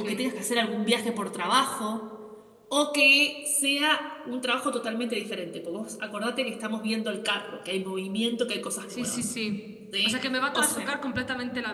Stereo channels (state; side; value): identical; both; correlation 1.00